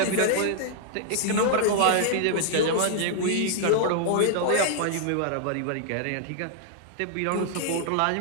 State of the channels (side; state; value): both; different; correlation -0.01